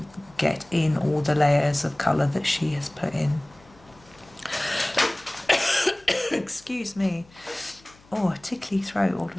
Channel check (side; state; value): left; noise; hum, 27 dB below the sound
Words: get in all the layers of colour that she has put in. Excuse me. Oh, a tickly throat all of